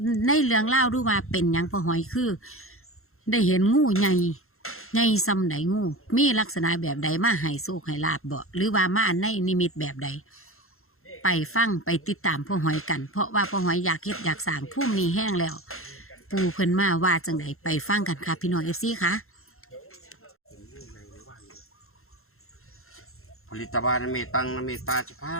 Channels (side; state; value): right; late; 0.62 ms